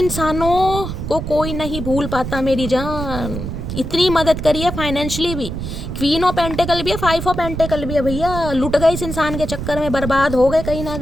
को कोई नहीं भूल पाता मेरी जान, इतनी मदद करी है फाइनेंशियली भी। क्वीन ऑफ पेंटिकल भी है, 5 ऑफ पेंटिकल भी है भैया, लुट गए इस इंसान के चक्कर में, बर्बाद हो गए कहीं ना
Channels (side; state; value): right; noise; rumble, 6 dB below the sound